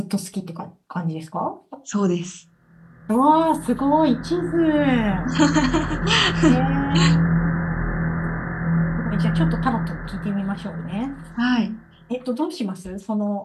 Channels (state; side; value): identical; both; correlation 1.00